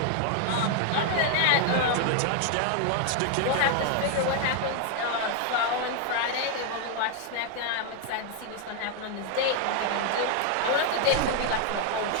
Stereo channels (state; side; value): different; both; correlation 0.00